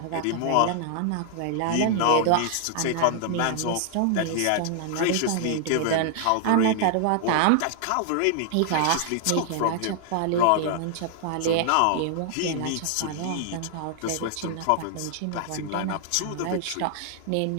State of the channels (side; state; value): both; different; correlation 0.00